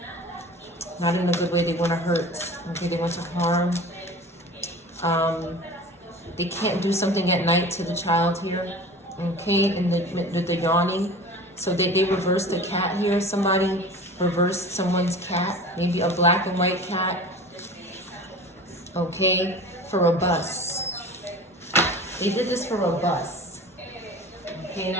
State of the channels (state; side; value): normal; both; correlation 0.37